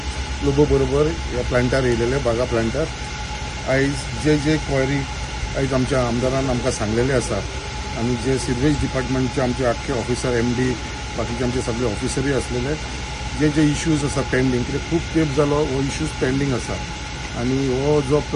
लोबो बरोबर ह्या प्लांटार येयलेले बागा प्लांटार. आयज जे क्वायरी आयज आमच्या आमदारान आमकां सांगलेले आसा आनी जे सिवेज डिपार्टमेंटचे आमचे आख्खे ऑफिसर MD बाकीचे आमचे सगळे ऑफिसरूय आसलेले जे इश्यूज आसा पेंडींग कित्याक खूब तेंप जालो हो इश्यूज पेंडींग आसा आनी हो जो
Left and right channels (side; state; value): both; identical; correlation 1.00